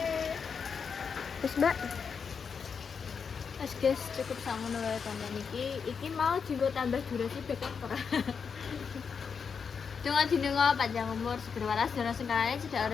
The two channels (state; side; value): quieter; right; 6.1 dB